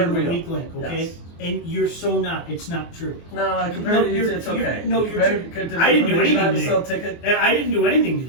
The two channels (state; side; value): late; right; 24 ms